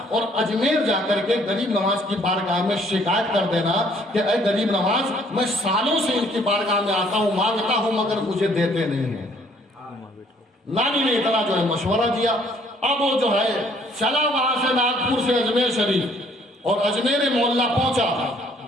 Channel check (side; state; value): both; normal; correlation 0.61